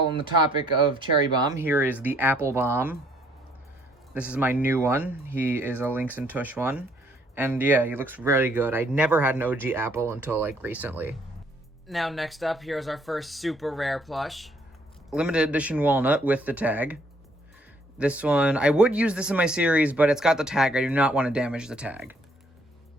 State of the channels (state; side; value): normal; both; correlation 0.65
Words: on the topic of cherry bomb, here is the apple bomb. This is my new one. He is a Links and Tush one. And yeah, he looks really good. I never had an OG apple until like recently. Now next up, here's our first super rare plush. Limited edition walnut with the tag. This one, I would use this in my series, but it's got the tag. I do not want to damage the tag.